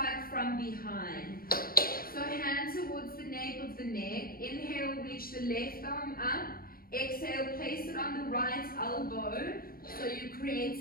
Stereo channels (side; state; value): right; late; 0.43 ms